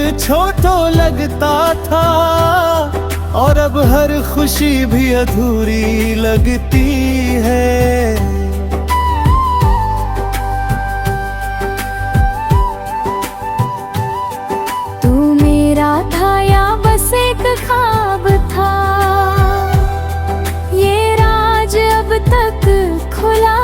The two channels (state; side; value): identical; both; correlation 1.00